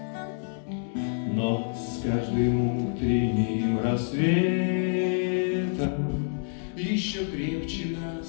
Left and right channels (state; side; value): silent; right; 60 dB below the other